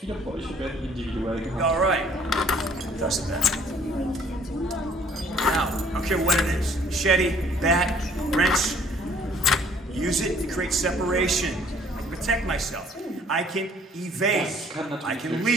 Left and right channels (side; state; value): both; normal; correlation 0.58